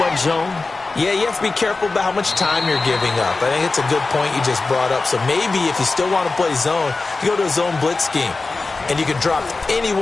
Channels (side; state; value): right; quieter; 3.7 dB